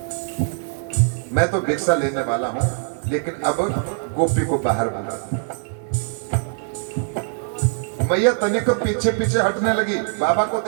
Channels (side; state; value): left; silent; digital silence